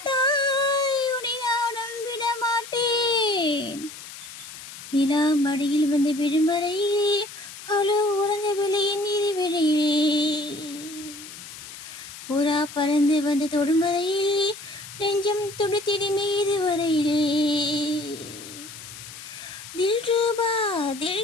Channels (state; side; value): noise; left; hiss, 14 dB below the sound